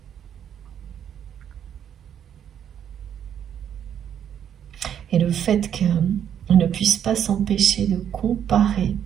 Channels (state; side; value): quieter; left; 9.2 dB